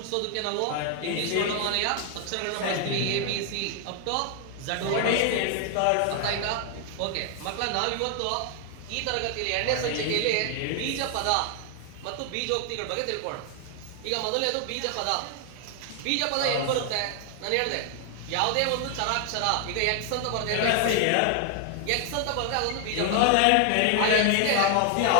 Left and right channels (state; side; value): different; both; correlation 0.00